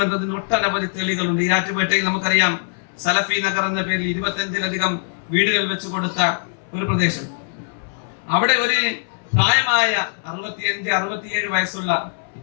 ഒട്ടനവധി തെളിവുകളുണ്ട്. ഈരാറ്റുപേട്ടയിൽ നമുക്കറിയാം സലഫി നഗർ എന്ന പേരിൽ 25-ലധികം വീടുകൾ വെച്ച് കൊടുത്ത ഒരു പ്രദേശം. അവിടെ ഒരു പ്രായമായ 65-67 വയസ്സുള്ള,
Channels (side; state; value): right; silent; 63 dB below the other